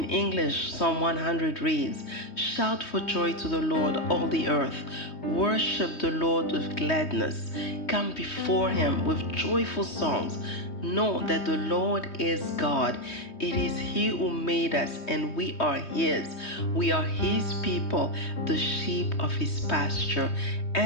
English, Psalm 100 reads, Shout for joy to the Lord, all the earth. Worship the Lord with gladness. Come before him with joyful songs. Know that the Lord is God. It is he who made us, and we are his. We are his people, the sheep of his pasture.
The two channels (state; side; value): late; right; 3.2 ms